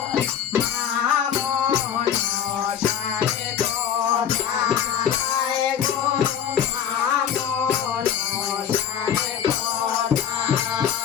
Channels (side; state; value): right; quieter; 9.1 dB